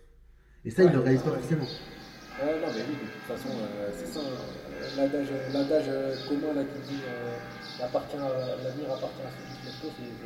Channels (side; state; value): both; identical; correlation 1.00